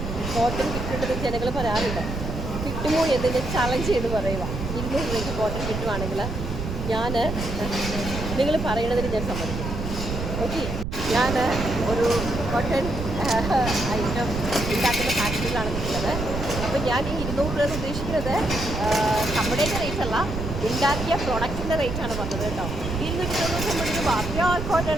കോട്ടൺ കിട്ടുന്നുണ്ടെന്ന് ജനങ്ങൾ പറയാറുണ്ട്. കിട്ടുമോ എന്നതിൻ്റെ ചലഞ്ച് ചെയ്ത് പറയുക. 200 രൂപയ്ക്ക് കോട്ടൺ കിട്ടുവാണെങ്കിൽ നിങ്ങൾ പറയണതിന് ഞാൻ സമ്മതിക്കും. ഓക്കെ, ഞാൻ ഒരു കോട്ടൺ ഐറ്റം ഉണ്ടാക്കുന്ന ഫാക്ടറിയിലാണ് നിൽക്കുന്നത്. അപ്പോൾ ഞാൻ ഈ 200 രൂപ ഉദ്ദേശിക്കുന്നത് നമ്മുടെയൊക്കെ റേറ്റ് അല്ല, ഉണ്ടാക്കിയ പ്രൊഡക്റ്റിൻ്റെ റേറ്റാണ് പറഞ്ഞത് കേട്ടോ. 290 രൂപ പ്യോർ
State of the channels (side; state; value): right; noise; rumble, 5 dB below the sound